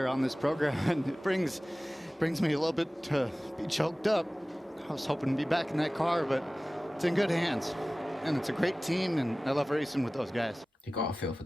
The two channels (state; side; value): normal; both; correlation 0.97